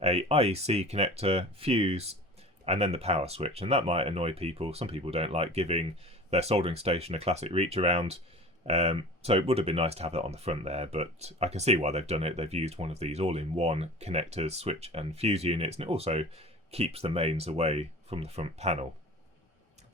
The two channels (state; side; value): normal; both; correlation 0.38